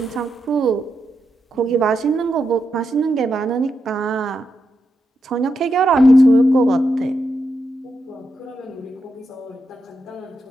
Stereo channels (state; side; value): normal; both; correlation 0.85